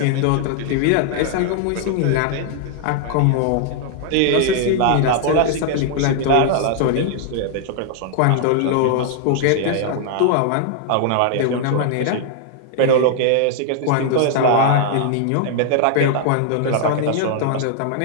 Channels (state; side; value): different; both; correlation 0.00